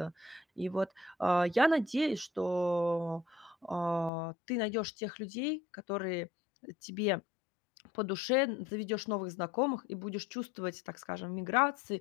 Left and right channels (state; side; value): drops out; right; at 4.1 s